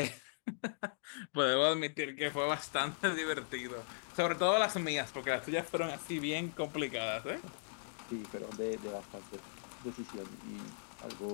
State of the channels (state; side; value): silent; right; digital silence